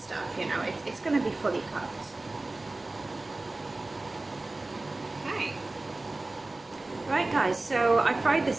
you know, it's going to be fully cooked. Okay. Right guys, so I fried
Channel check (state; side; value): quieter; left; 3.0 dB